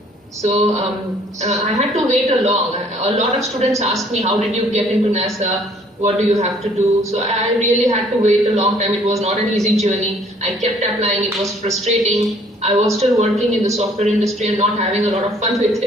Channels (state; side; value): normal; both; correlation 0.59